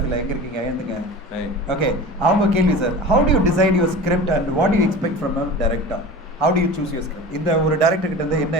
எங்கே இருக்கீங்க? எழுந்துங்க. ஓகே, அவங்க கேள்வி sir, how do you decide your script and what you expect from a director? How do you choose your script? இந்த ஒரு director கிட்ட இருந்து என்ன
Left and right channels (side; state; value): both; normal; correlation 0.35